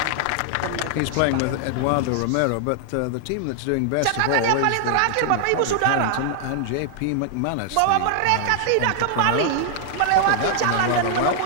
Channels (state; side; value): different; both; correlation 0.00